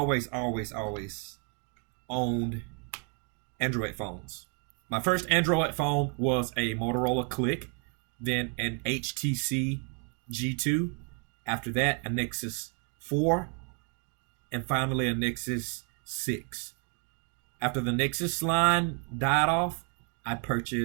owned Android phones. My first Android phone was a Motorola Click, then an HTC G2. After that, a Nexus 4, and finally a Nexus 6. After the Nexus line died off, I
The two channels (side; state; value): left; quieter; 39.7 dB